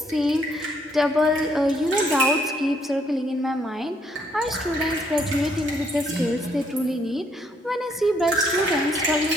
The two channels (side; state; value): both; normal; correlation 0.69